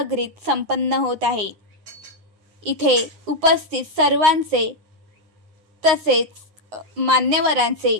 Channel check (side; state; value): left; late; 9.6 ms